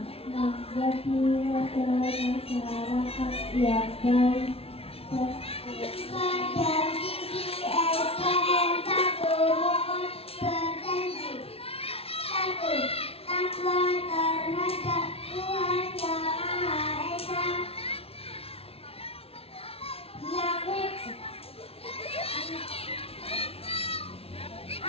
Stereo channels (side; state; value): right; late; 0.28 ms